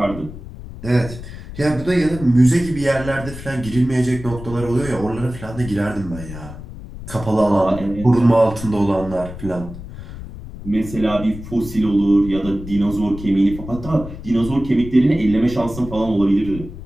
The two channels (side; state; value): left; noise; rumble, 12 dB below the sound